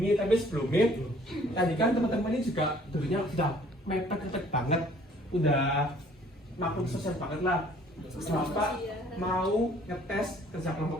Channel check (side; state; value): both; normal; correlation 0.57